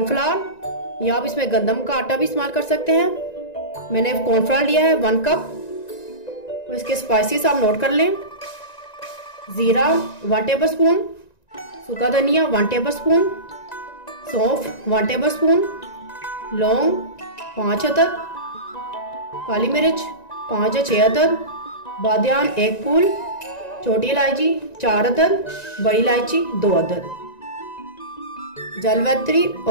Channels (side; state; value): right; late; 1.9 ms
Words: या आप इसमें गंदम का आटा भी इस्तेमाल कर सकते हैं। मैंने कॉर्नफ्लावर लिया है 1 कप। और इसके स्पाइसेस आप नोट कर लें। जीरा 1 टेबल स्पून, सूखा धनिया 1 टेबल स्पून, सौंफ 1 टेबल स्पून, लौंग 5 अदद, काली मिर्च 5 या 6 अदद, बादियान 1 फूल, छोटी इलायची 4 अदद, बड़ी इलायची 2 अदद, जलवत्री